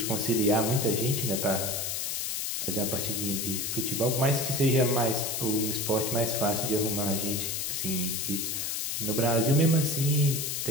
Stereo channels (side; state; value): left; noise; hiss, 1 dB below the sound